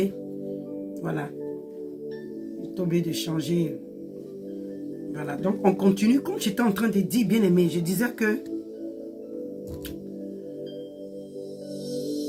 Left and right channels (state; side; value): identical; both; correlation 1.00